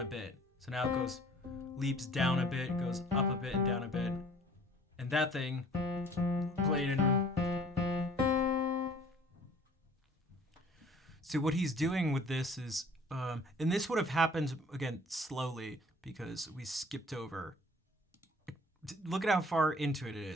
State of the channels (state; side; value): normal; both; correlation 0.52